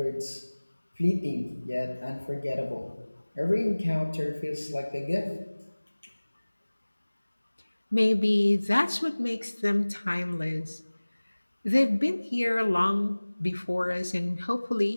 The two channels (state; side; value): inverted; both; correlation -1.00